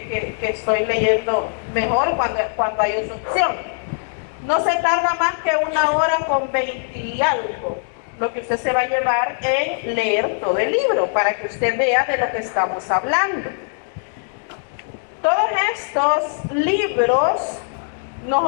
estoy leyendo mejor cuando hay instrucción. No se tarda más que 1 hora con 20 y algo lo que usted se va a llevar en leer todo el libro para que usted vea de lo que estamos hablando. Todos estos libros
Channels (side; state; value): right; silent; digital silence